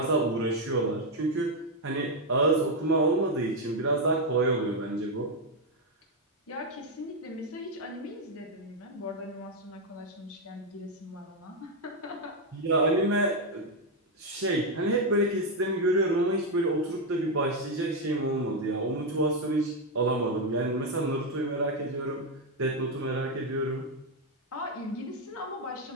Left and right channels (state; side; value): normal; both; correlation 0.03